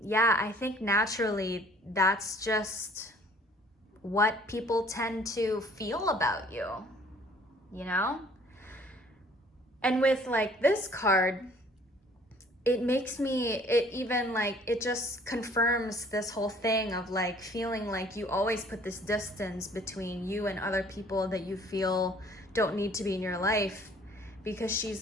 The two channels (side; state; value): both; normal; correlation 0.56